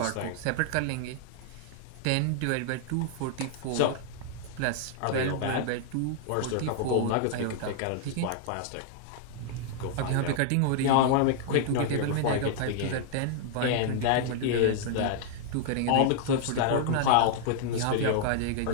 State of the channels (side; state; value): both; different; correlation -0.01